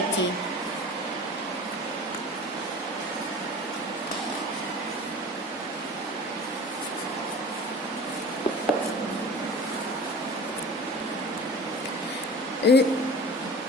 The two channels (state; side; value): normal; both; correlation 0.39